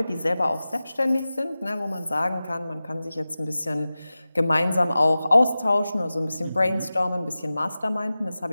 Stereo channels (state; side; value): inverted; both; correlation -0.96